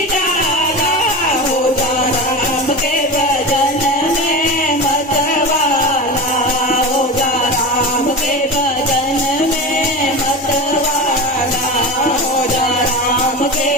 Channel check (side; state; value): both; normal; correlation 0.26